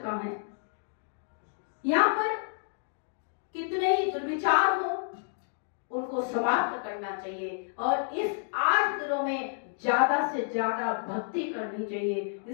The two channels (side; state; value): right; silent; digital silence